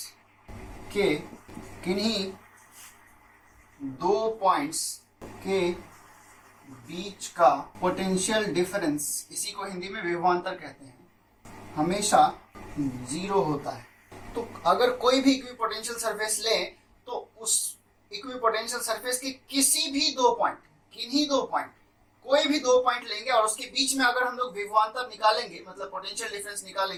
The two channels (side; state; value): both; identical; correlation 1.00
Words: के किन्हीं दो पॉइंट्स के बीच का पोटेंशियल डिफरेंस, इसी को हिंदी में विभवांतर कहते हैं, हमेशा जीरो होता है। तो अगर कोई भी इक्विपोटेंशियल सरफेस ले तो उस इक्विपोटेंशियल सरफेस के किसी भी दो पॉइंट, किन्हीं दो पॉइंट, कोई भी दो पॉइंट लेंगे और उसके बीच में अगर हम लोग विभवांतर निकालेंगे मतलब पोटेंशियल डिफरेंस